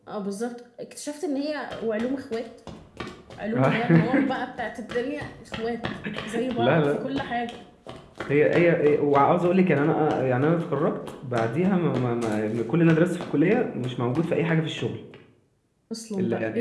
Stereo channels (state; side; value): identical; both; correlation 1.00